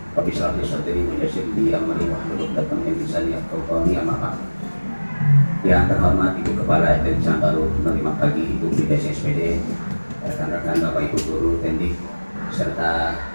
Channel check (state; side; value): inverted; both; correlation -1.00